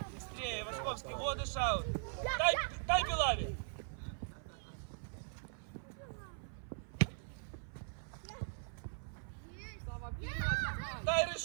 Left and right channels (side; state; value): left; silent; 51 dB below the other